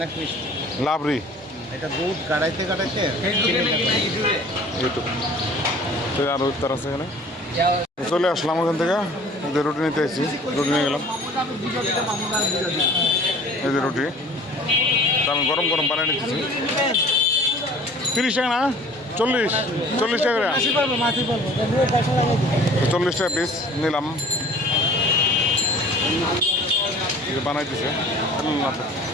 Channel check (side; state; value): both; normal; correlation 0.48